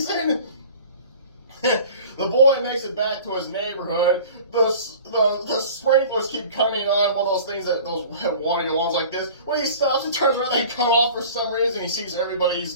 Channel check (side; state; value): both; inverted; correlation -0.43